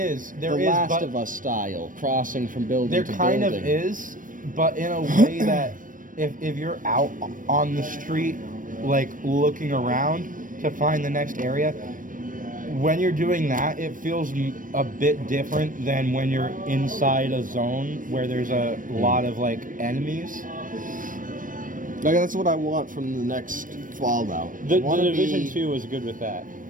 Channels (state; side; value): late; left; 0.38 ms